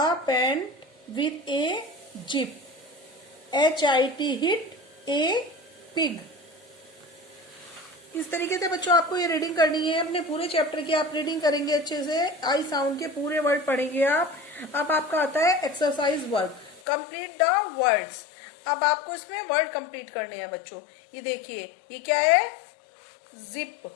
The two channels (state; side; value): drops out; right; at 16.8 s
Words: pant with a zip, HIT hit a pig। इस तरीके से बच्चों आपको ये रीडिंग करनी है। अपने पूरे चैप्टर की आप रीडिंग करेंगे अच्छे से। आई साउंड के पूरे वर्ड पढ़ेंगे आप। अब आपका आता है exercise work, complete the words. अब आपको इसमें वर्ड कंप्लीट करने हैं बच्चों। ये देखिए, ये क्या है? जिप।